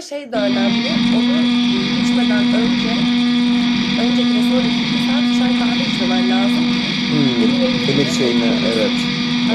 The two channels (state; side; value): identical; both; correlation 1.00